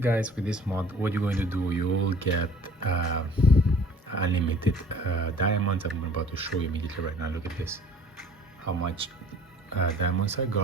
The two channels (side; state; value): both; normal; correlation 0.51